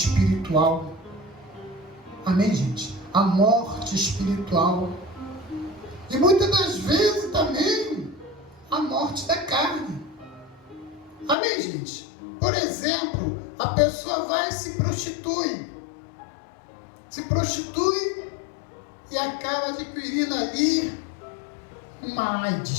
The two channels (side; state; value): right; drops out; at 11.4 s